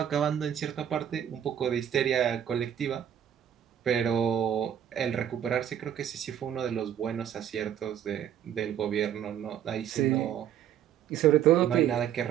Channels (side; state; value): left; quieter; 9.8 dB